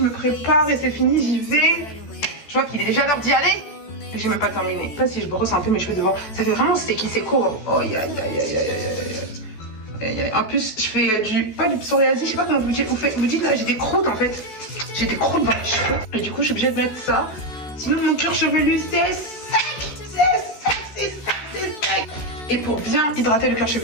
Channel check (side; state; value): right; late; 14 ms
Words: me prépare et c'est fini, j'y vais. Je vois qu'il est déjà l'heure d'y aller. Et j'ai même pas terminé. Je sais pas si je brosse un peu mes cheveux devant. Ça fait vraiment sticky, c'est court. Oh aïe aïe aïe aïe aïe aïe. En plus, je fais pas du psoriasis, je sais pas comment vous dites. Vous dites là, j'ai des croûtes en fait. J'ai des croûtes dans les cheveux. Et du coup, je suis obligée de mettre ça. Sinon, mon cuir chevelu, c'est sec. C'est sec. Et pour bien hydrater le cuir